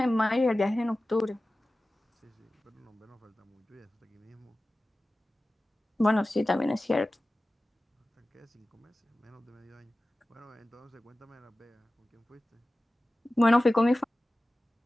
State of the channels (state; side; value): normal; both; correlation 0.96